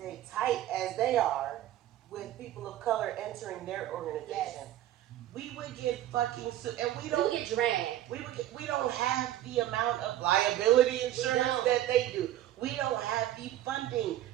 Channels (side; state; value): left; quieter; 13.1 dB